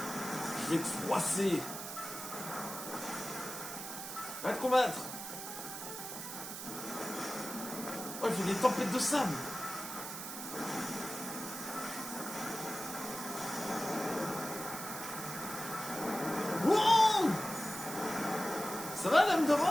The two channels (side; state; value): right; noise; hiss, 8 dB below the sound